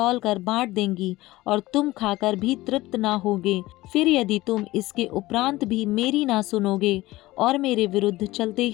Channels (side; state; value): right; quieter; 18.3 dB